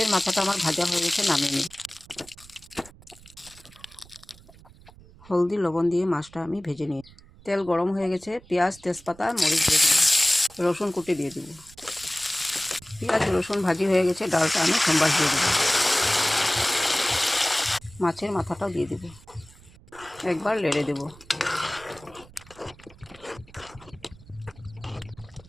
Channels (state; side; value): noise; right; rumble, 23 dB below the sound